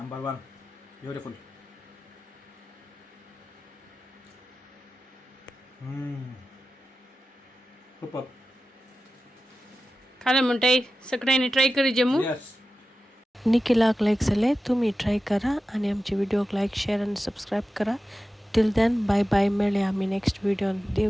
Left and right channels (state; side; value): normal; both; correlation 0.93